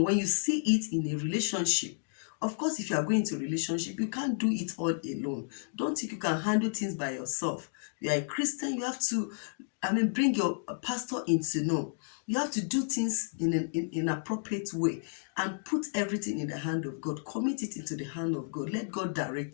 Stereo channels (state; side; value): silent; right; digital silence